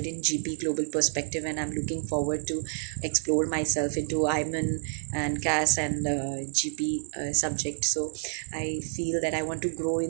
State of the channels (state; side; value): silent; left; digital silence